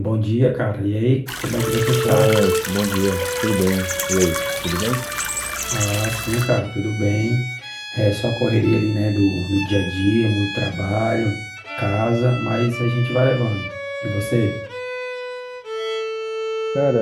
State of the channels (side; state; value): both; identical; correlation 1.00